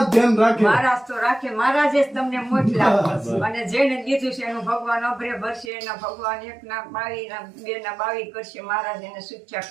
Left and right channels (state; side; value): drops out; left; at 5.7 s